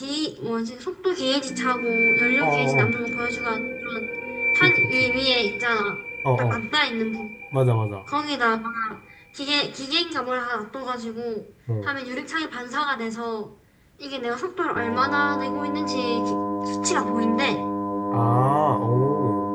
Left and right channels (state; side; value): identical; both; correlation 1.00